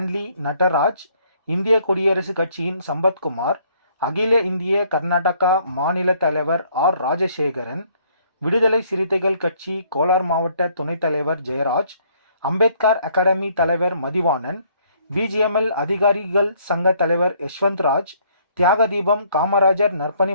நடராஜ், இந்திய குடியரசு கட்சியின் சம்பத்குமார், அகில இந்திய கர்நாடகா மாநில தலைவர் ஆர். ராஜசேகரன், விடுதலை சிறுத்தைகள் கட்சி கோலார் மாவட்ட துணைத் தலைவர் ஜெயராஜ், அம்பேத்கர் அகாடமி தலைவர் மதிவாணன், பிஜிஎம்எல் அதிகாரிகள் சங்க தலைவர் யஷ்வந்த்ராஜ், தியாகதீபம் காமராஜர்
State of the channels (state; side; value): inverted; both; correlation -0.64